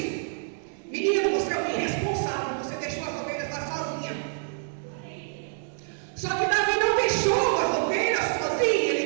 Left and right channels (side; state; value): left; silent; digital silence